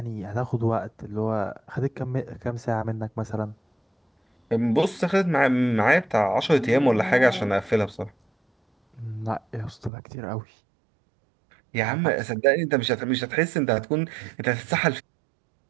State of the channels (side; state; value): left; drops out; at 9.9 s